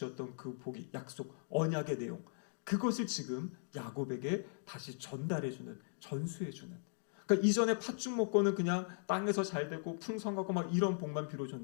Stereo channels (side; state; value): right; silent; digital silence